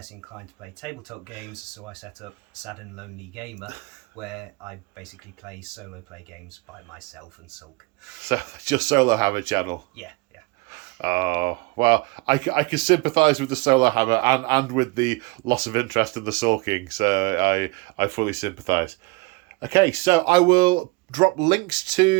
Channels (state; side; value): quieter; left; 25.9 dB